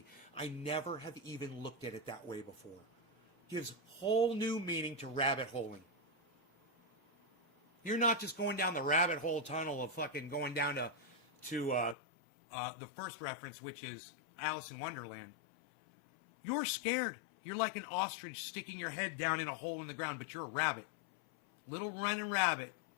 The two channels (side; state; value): right; drops out; at 12.0 s